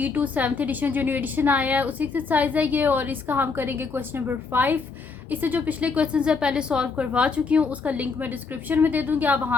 7th edition जो न्यू एडिशन आया है उसी एक्सरसाइज है ये, और इसका हम करेंगे क्वेश्चन नंबर 5। इससे जो पिछले क्वेश्चन है पहले सॉल्व करवा चुकी हूँ, उसका लिंक मैं डिस्क्रिप्शन में दे दूँगी, आप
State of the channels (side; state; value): right; quieter; 4.7 dB